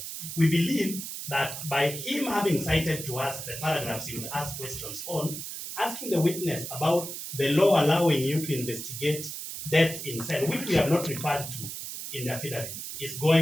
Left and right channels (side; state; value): right; noise; hiss, 8 dB below the sound